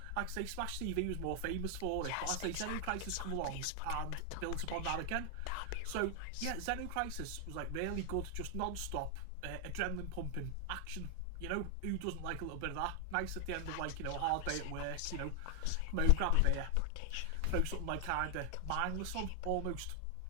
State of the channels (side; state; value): both; different; correlation 0.00